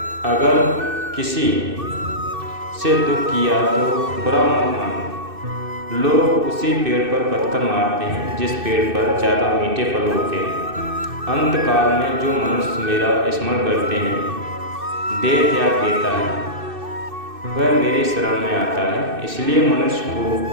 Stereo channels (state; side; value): late; left; 2.6 ms